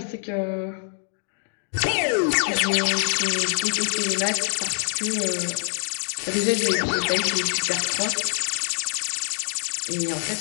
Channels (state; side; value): silent; right; digital silence